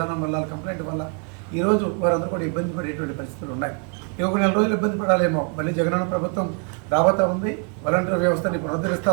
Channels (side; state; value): left; quieter; 37.6 dB